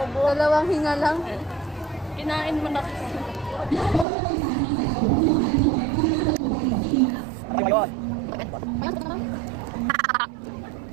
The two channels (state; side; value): drops out; left; at 4.0 s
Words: Dalawang hinga lang. Kinain mo na. Ayun.